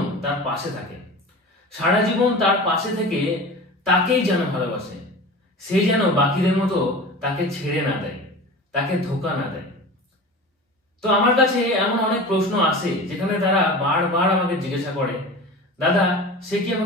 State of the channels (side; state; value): both; normal; correlation 0.34